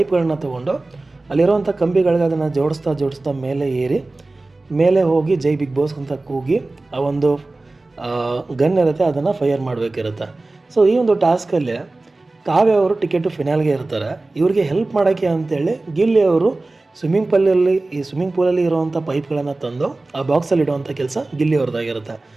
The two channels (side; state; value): left; quieter; 3.1 dB